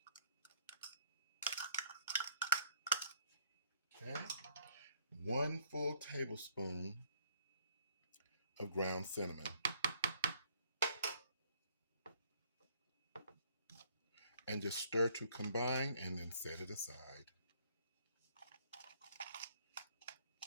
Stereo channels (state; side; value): inverted; both; correlation -0.63